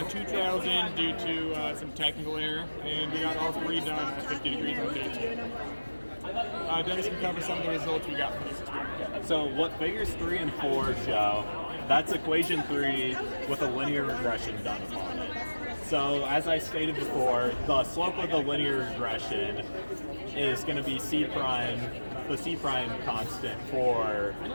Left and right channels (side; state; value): both; inverted; correlation -1.00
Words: 2 trials in due to some technical error, and we got all 3 done at 50 degrees on day 2. Dennis can cover some of the results we got from this experiment. So what figures 3 and 4 show, that's equation 3 with a linear regression done upon it. So as I stated before, the slope of the linear regression is going to be the C prime constant for